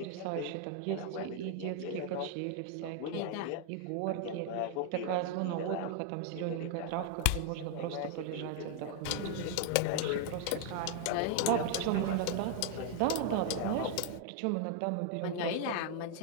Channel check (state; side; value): different; both; correlation 0.00